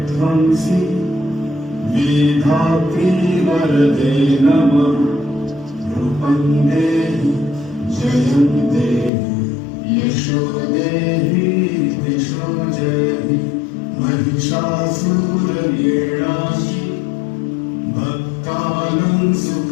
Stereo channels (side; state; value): right; drops out; at 9.1 s